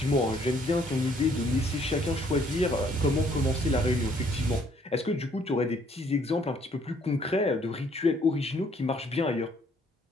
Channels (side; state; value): both; normal; correlation 0.64